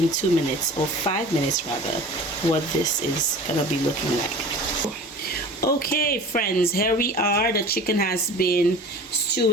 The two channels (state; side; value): normal; both; correlation 0.40